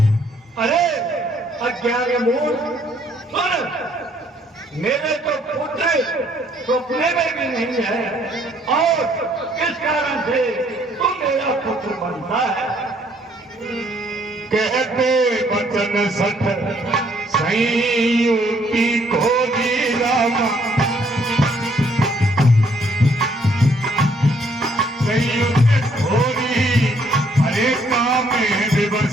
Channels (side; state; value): both; normal; correlation 0.66